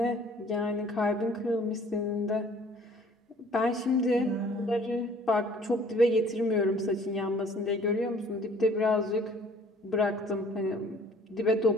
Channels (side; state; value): both; normal; correlation 0.54